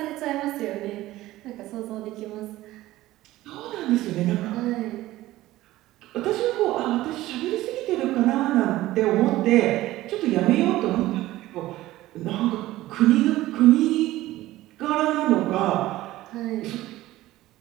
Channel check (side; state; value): left; quieter; 16.3 dB